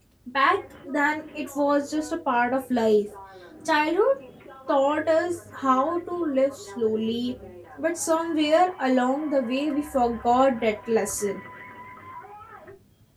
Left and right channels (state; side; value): identical; both; correlation 1.00